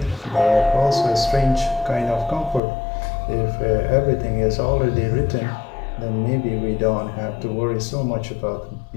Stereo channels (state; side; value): drops out; right; at 2.6 s